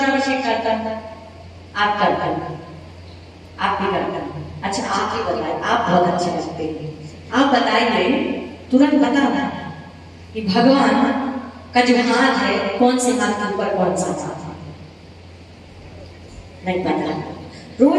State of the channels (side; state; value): both; identical; correlation 1.00